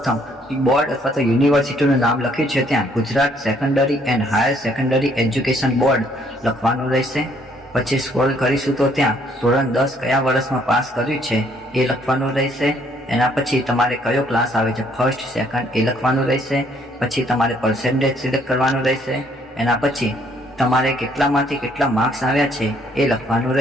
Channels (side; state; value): both; normal; correlation 0.65